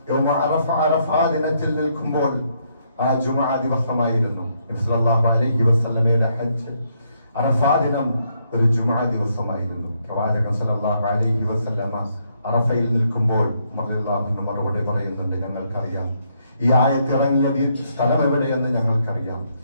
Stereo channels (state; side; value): inverted; both; correlation -0.74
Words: യൗമ അറഫ ദിനത്തിൽ നിൽക്കുമ്പോൾ, ആ ജുമുഅ ദിവസമായിരുന്നു. നബി സല്ലല്ലാഹു അലൈഹി വസല്ലമയുടെ ഹജ്ജ് അറഫ ദിനം ഒരു ജുമുഅ ദിവസമായിരുന്നു. പ്രവാചകൻ സല്ലല്ലാഹു അലൈഹി വസല്ലമ അറഫയിൽ നിൽക്കുമ്പോൾ റളിയല്ലാഹു മറുപടി പറയുന്നുണ്ട്, ഞങ്ങൾക്കറിയാം ഈ ആയത്തിറങ്ങിയ സ്ഥലം എവിടെയെന്ന് ഞങ്ങൾക്കറിയാം,